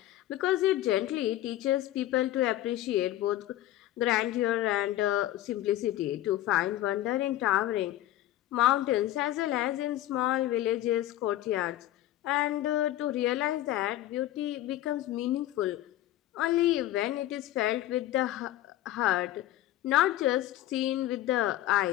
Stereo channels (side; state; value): right; quieter; 14.3 dB